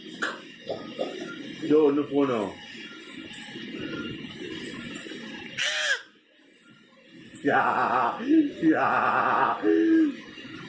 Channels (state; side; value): identical; both; correlation 1.00